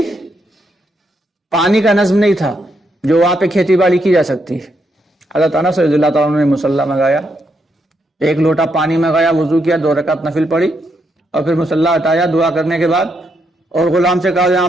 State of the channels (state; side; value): normal; both; correlation 0.79